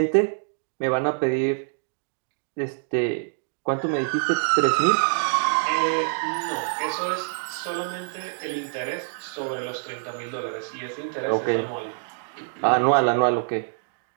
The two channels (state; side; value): silent; left; digital silence